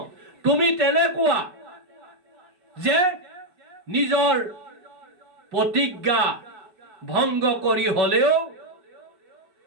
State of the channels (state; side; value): late; left; 5.3 ms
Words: তুমি তেনেকুৱা যে নিজৰ প্ৰতিজ্ঞা ভংগ কৰি হলেও